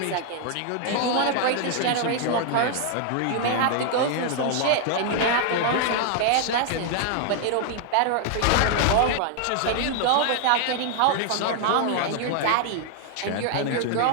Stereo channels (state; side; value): different; both; correlation 0.00